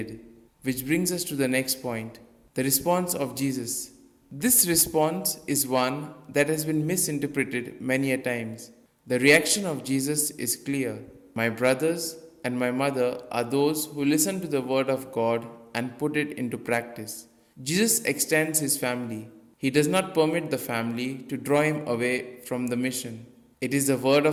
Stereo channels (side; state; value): both; identical; correlation 1.00